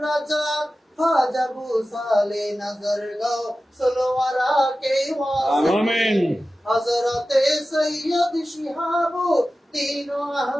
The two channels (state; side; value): normal; both; correlation 0.95